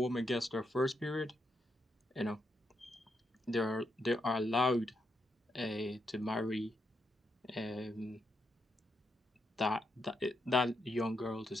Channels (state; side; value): normal; both; correlation 0.82